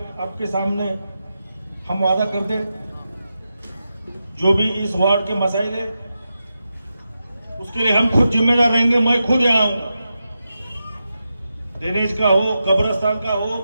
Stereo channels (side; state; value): both; inverted; correlation -0.89